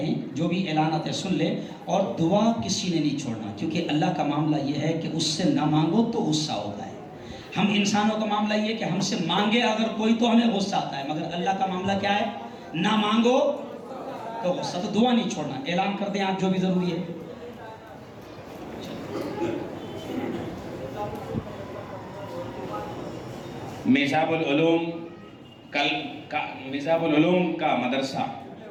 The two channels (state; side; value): identical; both; correlation 1.00